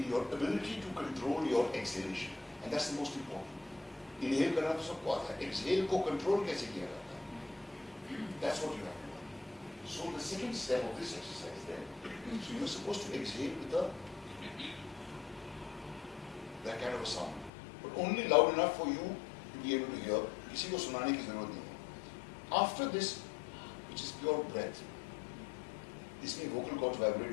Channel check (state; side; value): drops out; right; at 17.5 s